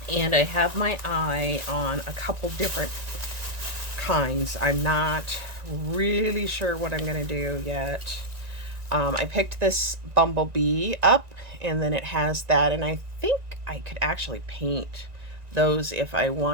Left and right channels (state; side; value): late; left; 1.9 ms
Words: And I have my eye on a couple different kinds. I'm not really sure what I'm going to do yet. I picked this Bumblebee up, and then it has that, and I think I could actually paint those if I